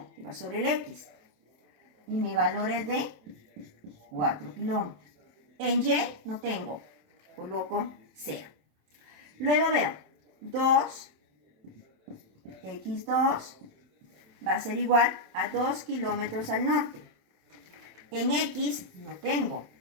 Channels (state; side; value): late; left; 27 ms